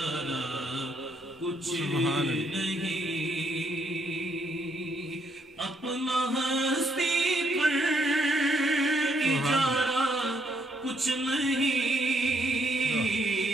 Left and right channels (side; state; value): both; normal; correlation 0.73